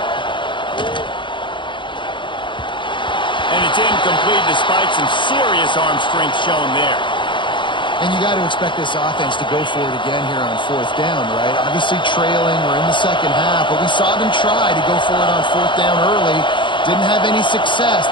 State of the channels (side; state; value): right; late; 0.23 ms